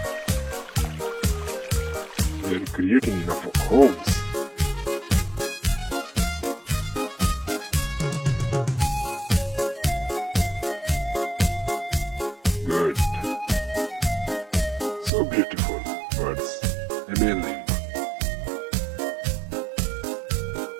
They are creating enough homes. Good. So beautiful birds. Amazing.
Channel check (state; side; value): drops out; left; at 15.1 s